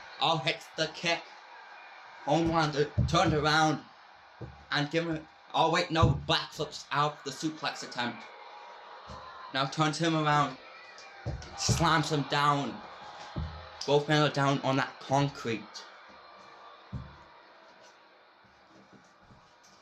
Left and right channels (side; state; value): both; identical; correlation 1.00